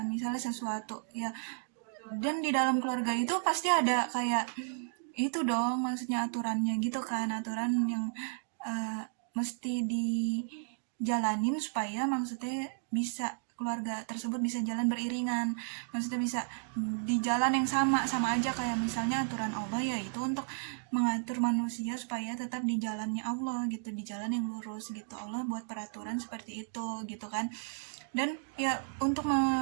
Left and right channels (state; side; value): silent; left; digital silence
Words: misalnya sesuatu ya. Dan di dalam keluarga itu pasti ada kayak itu dong, maksudnya aturannya gitu kan, aturan yang uh, mesti dijalanin supaya maksudnya bisa keluarga tersebut bisa jalan beriringan, maksudnya bisa di jalan yang sama sama aja. Kayak misalnya aturan Allah ya itu untuk mengatur manusia supaya tetap di jalannya Allah gitu, di jalan yang lurus gitu. Allah buat peraturan seperti itu gitu kan. Dan ya untuk